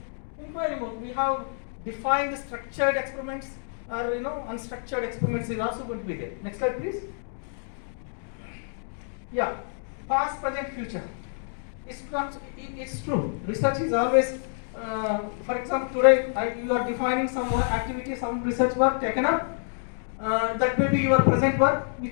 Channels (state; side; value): silent; right; digital silence